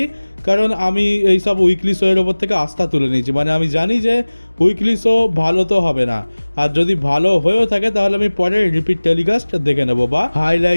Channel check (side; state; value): both; inverted; correlation -1.00